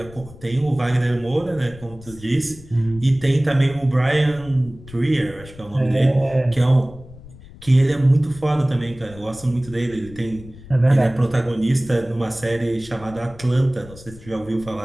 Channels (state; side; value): noise; left; rumble, 19 dB below the sound